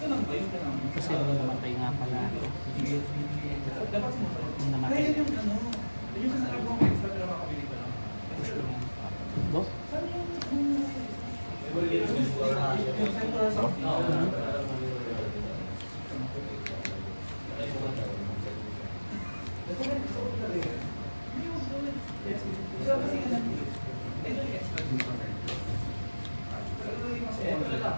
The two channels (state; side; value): inverted; both; correlation -1.00